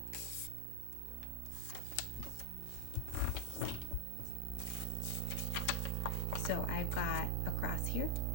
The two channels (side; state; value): both; different; correlation -0.01